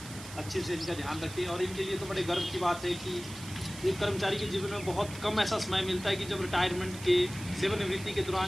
अच्छे से इनका ध्यान रखें। और इनके लिए तो बड़े गर्व की बात है कि एक कर्मचारी के जीवन में बहुत कम ऐसा समय मिलता है कि जब रिटायरमेंट के, सेवानिवृत्ति के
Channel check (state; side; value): noise; right; hiss, 14 dB below the sound